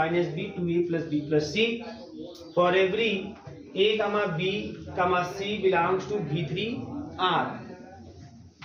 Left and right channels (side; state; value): both; identical; correlation 1.00